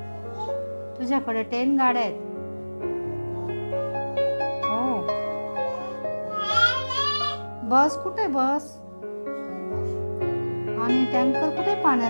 तुझ्याकडे 10 गाड्या आहेत. हो. बस कुठे बस आणि टँकर कुठे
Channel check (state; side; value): inverted; both; correlation -1.00